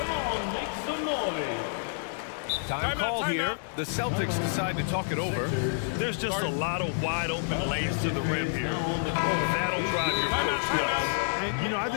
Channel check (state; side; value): silent; right; digital silence